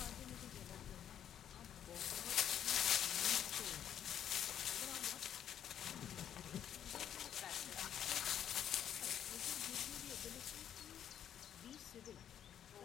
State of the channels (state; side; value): quieter; right; 9.8 dB